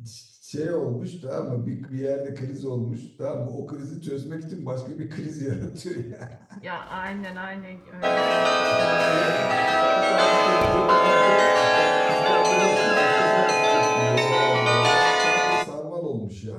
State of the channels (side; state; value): both; identical; correlation 1.00